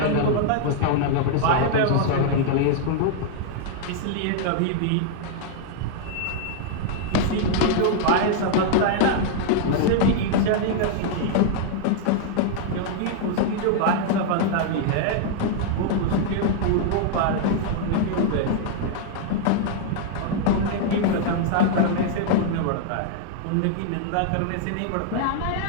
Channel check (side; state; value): both; different; correlation -0.01